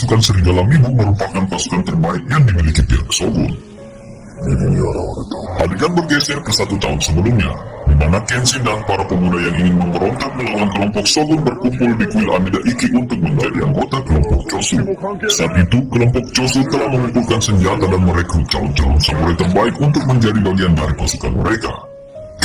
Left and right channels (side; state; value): both; identical; correlation 1.00